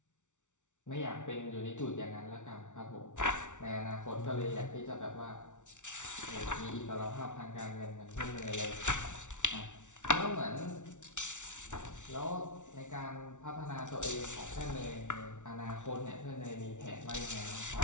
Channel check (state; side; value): late; right; 0.86 ms